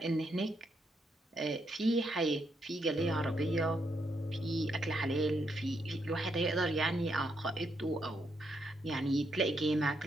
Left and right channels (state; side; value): normal; both; correlation 0.78